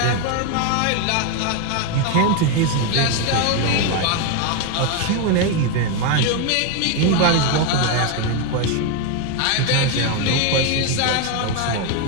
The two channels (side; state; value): both; different; correlation 0.01